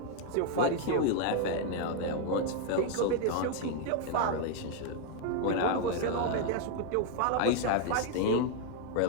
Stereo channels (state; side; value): different; both; correlation 0.01